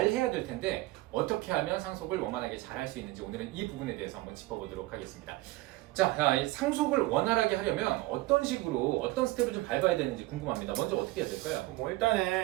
해야 될 텐데 어떻게 하면 상속을 원만하게 잘 할 수 있는지 오늘은 이 부분에 대해서 한번 짚어보도록 하겠습니다. 자, 이 상속을 원활하게 하려면 어떤 식으로 어떤 스텝을 좀 밟아야 되는지 궁금합니다. 먼저 어떻게 해야 될까요? 뭐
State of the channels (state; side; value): quieter; left; 19.3 dB